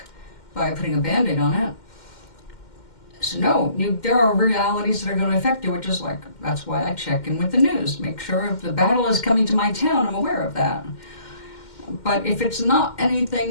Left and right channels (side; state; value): right; late; 2.1 ms